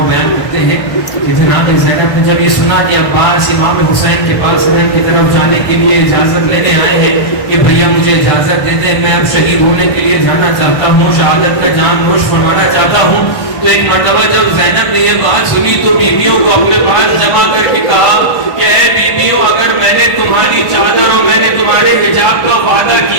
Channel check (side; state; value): right; late; 1.5 ms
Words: بیان کرتے ہیں کہ جناب زینب نے جب یہ سنا کہ عباس امام حسین کے پاس حرم کی طرف جانے کے لیے اجازت لینے آئے ہیں کہ بھیا مجھے اجازت دے دیں، میں اب شہید ہونے کے لیے جانا چاہتا ہوں، شہادت کا جام نوش فرمانا چاہتا ہوں. تو ایک مرتبہ جب زینب نے یہ بات سنی تو بیویوں کو اپنے پاس جمع کر کے کہا کہ اے بیویوں، اگر میں نے تمہاری چادر اور میں نے تمہارے حجاب کا وعدہ